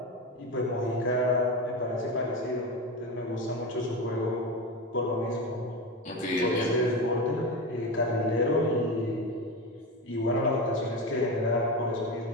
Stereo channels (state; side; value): normal; both; correlation 0.20